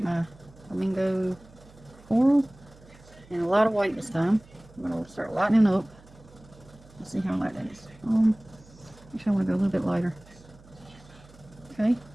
my flamingo floral and a lot of white this time. I'm going to start lightening up. Let's see how light that is. Actually, I want to go a little bit lighter. Okay.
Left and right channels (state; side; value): noise; right; hum, 24 dB below the sound